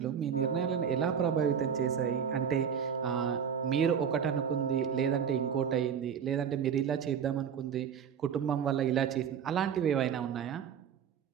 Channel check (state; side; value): quieter; left; 7.7 dB